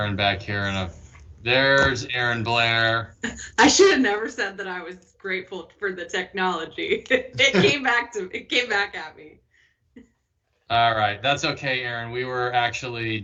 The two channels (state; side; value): identical; both; correlation 1.00